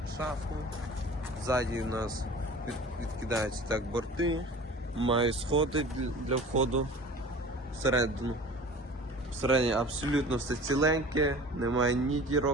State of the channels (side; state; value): both; normal; correlation 0.41